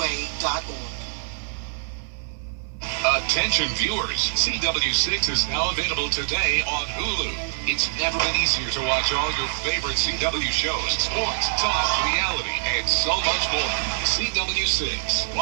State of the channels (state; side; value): silent; left; 62 dB below the other